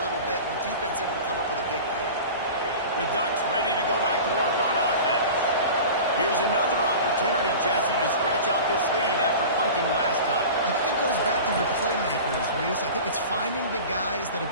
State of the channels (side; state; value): both; inverted; correlation -0.35